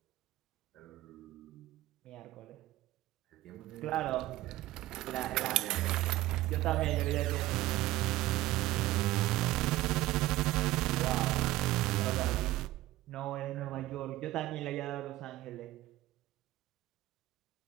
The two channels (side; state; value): left; quieter; 16.3 dB